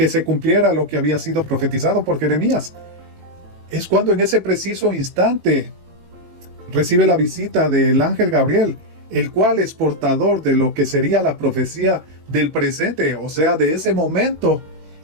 se cumpliera lo que había sido profetizado por Jeremías. Es cuando en ese preciso instante recibe la visita del ángel Gabriel, el cual es portador de lo que sería la profecía del presente, o sea, de ese momento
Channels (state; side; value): late; left; 18 ms